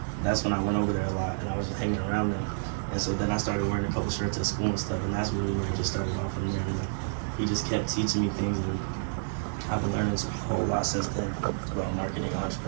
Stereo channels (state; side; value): silent; left; digital silence